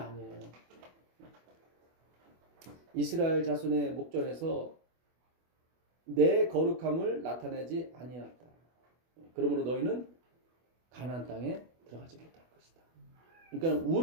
아니에요. 이스라엘 자손의 목전에서 내 거룩함을 나타내지 아니하였다. 그러므로 너희는 가나안 땅에 들어가지 못할 것이다. 그러니까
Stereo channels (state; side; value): late; left; 24 ms